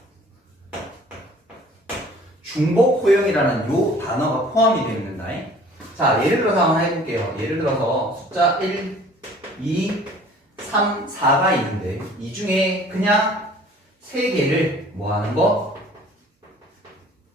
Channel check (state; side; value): normal; both; correlation 0.51